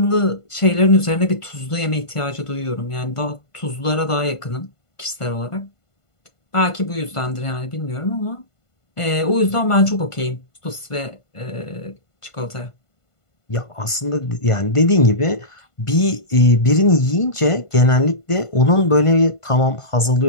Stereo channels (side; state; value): right; late; 1.5 ms